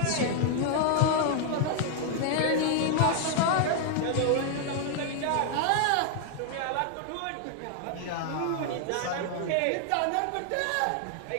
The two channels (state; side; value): different; both; correlation 0.00